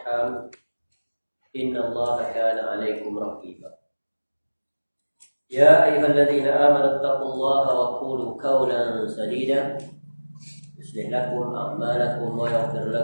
innallaha kana 'alaikum raqiba. يا أيها الذين آمنوا اتقوا الله وقولوا قولا سديدا يصلح لكم أعمالكم ويغفر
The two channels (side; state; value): both; inverted; correlation -1.00